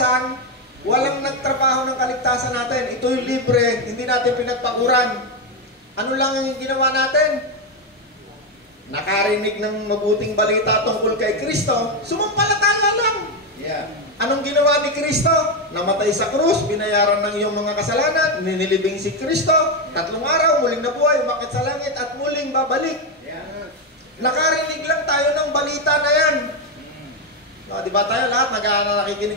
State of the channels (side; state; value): both; normal; correlation 0.07